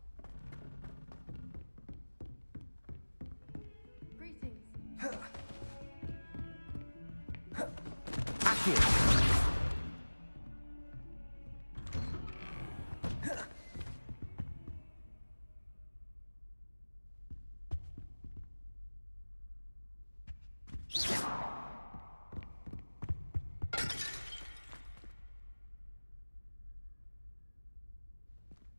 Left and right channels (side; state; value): both; inverted; correlation -1.00